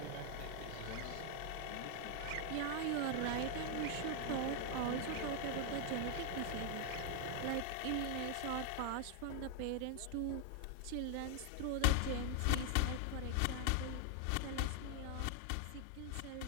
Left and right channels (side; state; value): both; different; correlation 0.00